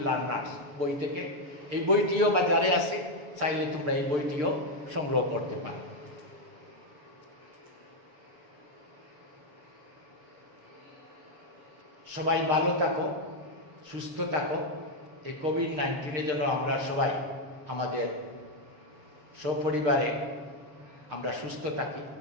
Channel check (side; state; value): left; late; 6.7 ms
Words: learners বই থেকে। এই বইটিও বাজারে আছে, চাইলে তোমরা এই বইটিও সংগ্রহ করতে পারো। সবাই ভালো থাকো, সুস্থ থাকো। এই কোভিড-19 জন্য আমরা সবাই আমাদের সপরিবারে আমরা সুস্থ থাকি।